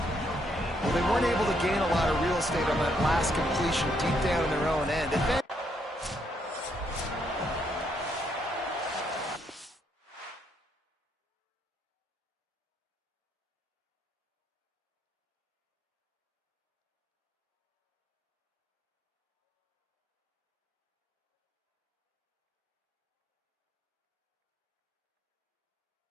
Well, they weren't able to gain a lot of real estate on that last completion deep down in their own end.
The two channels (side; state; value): both; normal; correlation 0.74